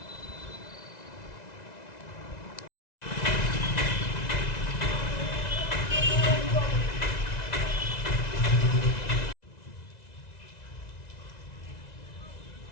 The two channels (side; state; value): right; late; 2.0 ms